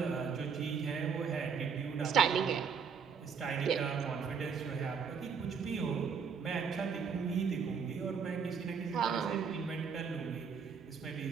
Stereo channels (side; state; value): left; quieter; 6.3 dB